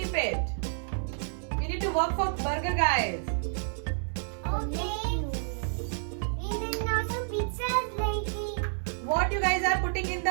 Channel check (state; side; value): silent; left; digital silence